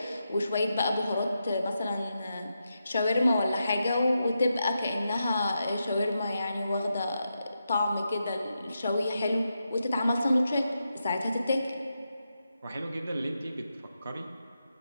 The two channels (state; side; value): inverted; both; correlation -0.87